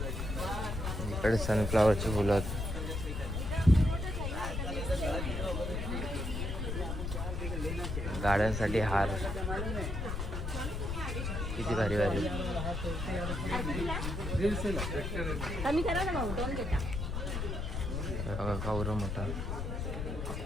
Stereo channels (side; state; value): left; noise; rumble, 3 dB below the sound